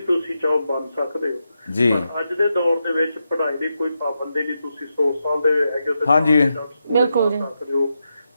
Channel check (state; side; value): inverted; both; correlation -0.86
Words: ਤੁਸੀਂ ਚਾਹੋ ਬਣ ਸਕਦੇ ਹੋ। ਜੀ ਪਰ ਅੱਜ ਦੇ ਦੌਰ ਦੇ ਵਿੱਚ ਪੜ੍ਹਾਈ ਦੀ ਕੋਈ ਪਾਬੰਦੀ ਨਹੀਂ, ਤੁਸੀਂ 100 ਸਾਲ ਦੇ ਹੈਗੇ ਹੋ ਤੇ ਹਾਂਜੀ ਬਿਲਕੁਲ ਜੀ,